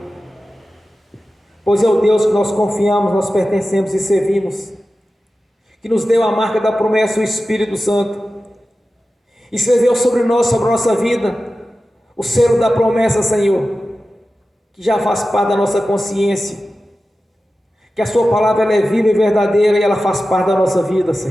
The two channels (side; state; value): both; normal; correlation 0.94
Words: pois é o Deus que nós confiamos, nós pertencemos e servimos, que nos deu a marca da promessa, o Espírito Santo, escreveu sobre nós, sobre a nossa vida, o selo da promessa, Senhor, que já faz parte da nossa consciência, que a Sua palavra ela é viva e verdadeira e ela faz parte da nossa vida,